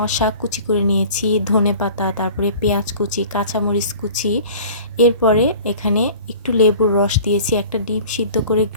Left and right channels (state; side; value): inverted; both; correlation -0.45